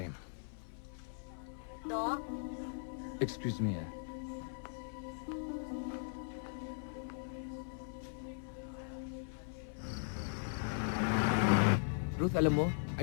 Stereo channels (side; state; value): right; silent; 52 dB below the other